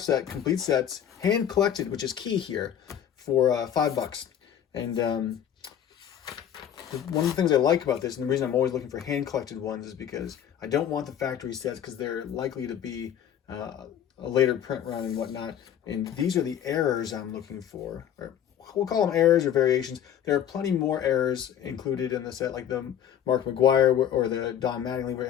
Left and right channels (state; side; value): quieter; right; 9.8 dB